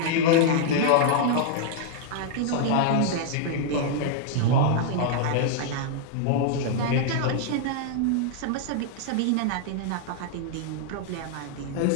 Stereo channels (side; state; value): both; different; correlation -0.01